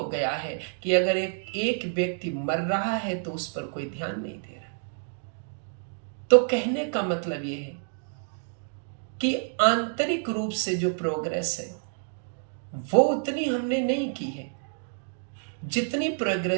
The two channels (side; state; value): left; silent; digital silence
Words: गया है कि अगर एक व्यक्ति मर रहा है तो उस पर कोई ध्यान नहीं दे रहा। तो कहने का मतलब यह है कि आंतरिक रूप से जो प्रोग्रेस है वो उतनी हमने नहीं की है जितनी